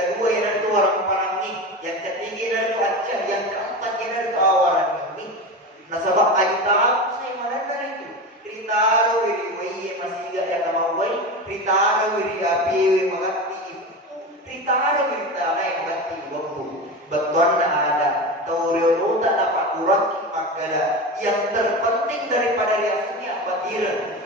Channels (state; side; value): normal; both; correlation 0.25